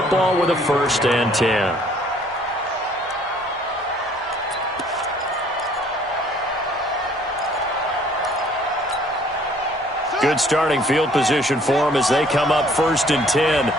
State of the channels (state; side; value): normal; both; correlation 0.59